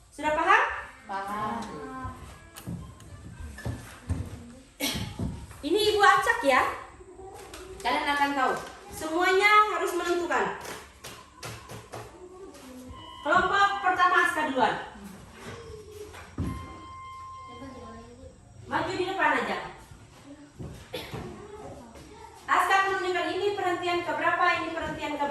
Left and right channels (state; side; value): identical; both; correlation 1.00